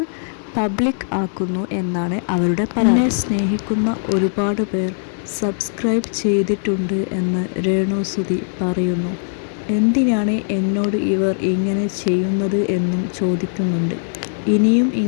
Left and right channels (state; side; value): silent; right; digital silence